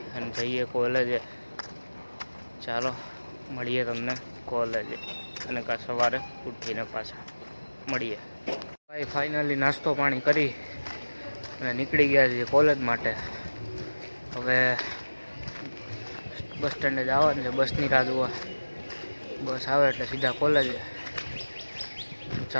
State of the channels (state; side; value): inverted; both; correlation -1.00